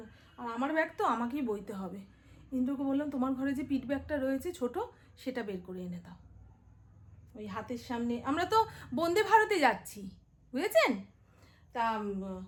না। আর আমার ব্যাগ তো আমাকেই বইতে হবে। ইন্দ্রকে বললাম তোমার ঘরে যে পিঠ ব্যাগটা রয়েছে ছোট, সেটা বের করে এনে দাও। ওই হাতের সামনে, আমরা তো বন্দে ভারতে যাচ্ছি, বুঝেছেন। তা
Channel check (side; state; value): both; identical; correlation 1.00